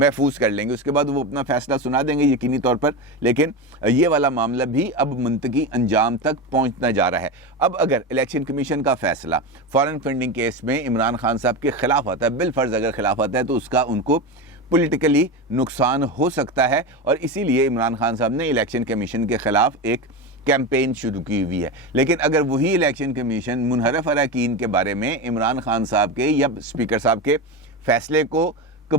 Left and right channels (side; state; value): both; normal; correlation 0.20